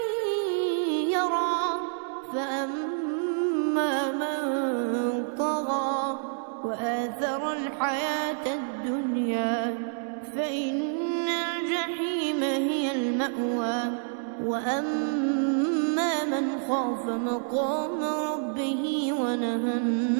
يرى فأما من طغى وآثر الحياة الدنيا فإن الجحيم هي المأوى وأما من خاف مقام ربه ونهى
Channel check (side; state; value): left; silent; 59 dB below the other